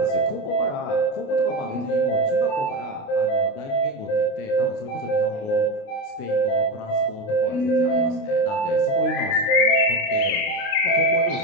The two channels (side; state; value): right; late; 29 ms